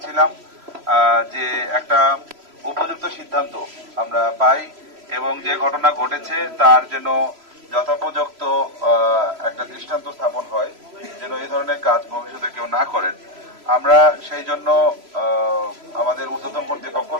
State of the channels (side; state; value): left; late; 3.0 ms